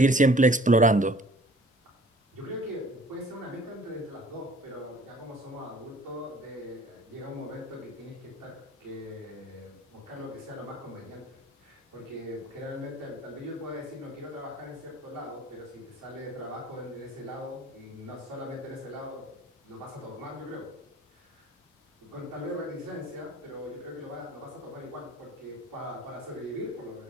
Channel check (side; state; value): both; normal; correlation 0.52